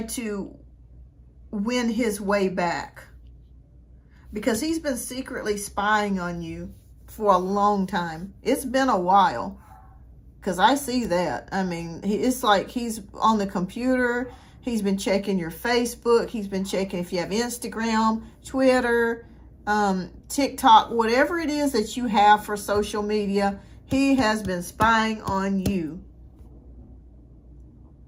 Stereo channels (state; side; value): identical; both; correlation 1.00